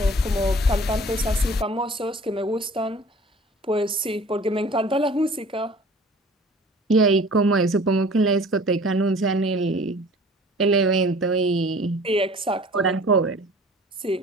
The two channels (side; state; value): both; normal; correlation 0.47